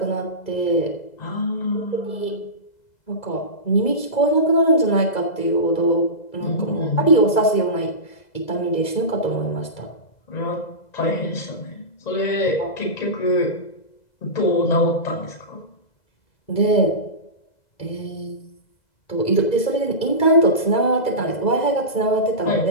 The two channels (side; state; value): right; late; 2.0 ms